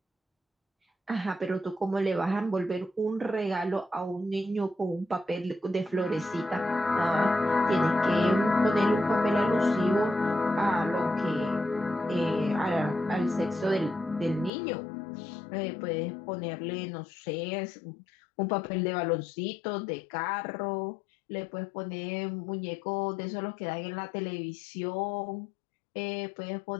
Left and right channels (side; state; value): right; drops out; at 14.5 s